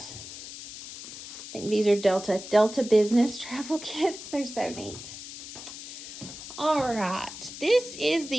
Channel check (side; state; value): left; noise; hiss, 12 dB below the sound